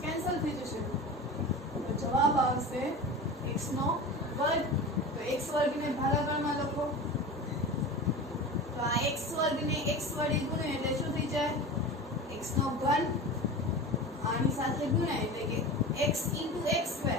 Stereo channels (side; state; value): both; normal; correlation 0.31